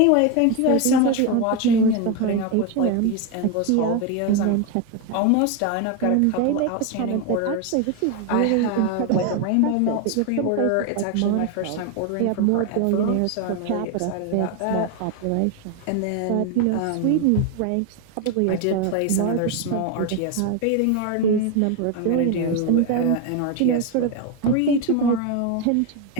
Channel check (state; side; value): different; both; correlation 0.02